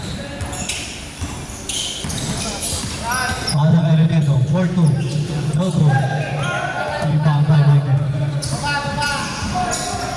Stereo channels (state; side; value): identical; both; correlation 1.00